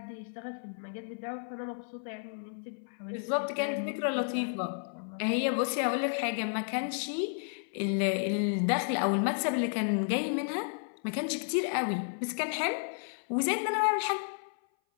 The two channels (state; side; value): silent; right; 56 dB below the other